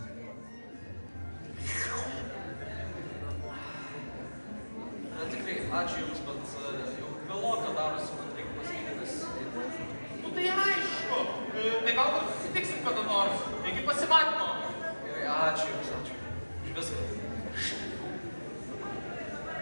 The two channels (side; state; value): both; inverted; correlation -1.00